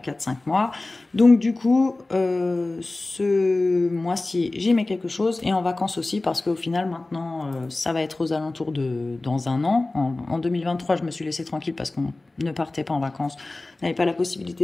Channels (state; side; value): quieter; right; 3.0 dB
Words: 4-5 mois. Donc du coup, ce mois-ci, j'y mets quelque chose. Et en vacances aussi, parce qu'au final, maintenant, ça va être aux alentours de dans un an. En 2023, je me suis laissée tranquille parce qu'on ne partait pas en vacances. On n'avait pas la